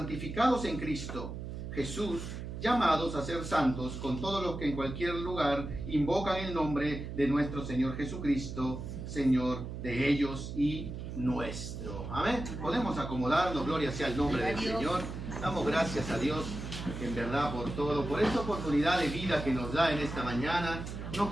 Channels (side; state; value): right; noise; hum, 7 dB below the sound